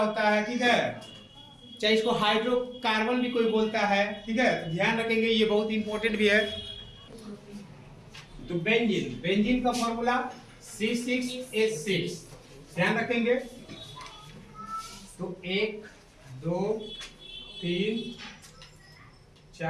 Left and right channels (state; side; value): identical; both; correlation 1.00